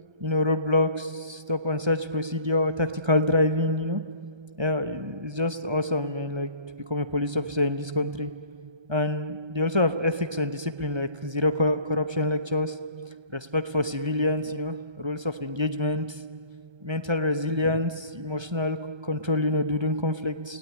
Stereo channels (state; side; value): late; left; 1.3 ms